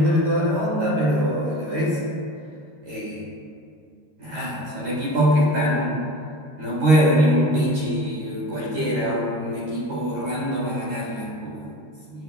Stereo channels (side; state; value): left; late; 13 ms